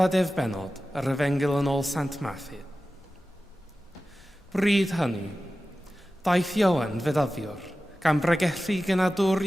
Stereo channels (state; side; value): normal; both; correlation 0.95